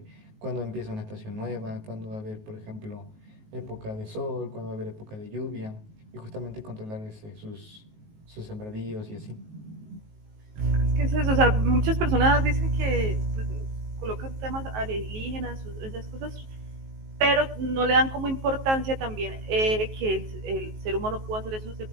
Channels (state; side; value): late; left; 19 ms